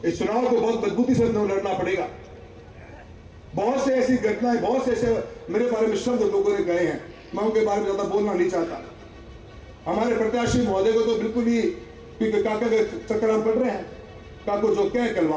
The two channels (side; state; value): both; identical; correlation 1.00